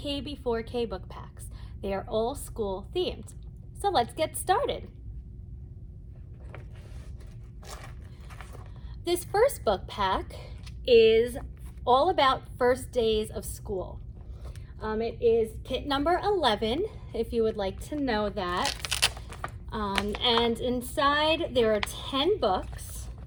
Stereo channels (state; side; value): identical; both; correlation 1.00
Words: before K book packs. They are all school themed. So let's get started. This first book pack is all about first days of school. It is kit number 11, if you would like to know that. And inside there are 10 books,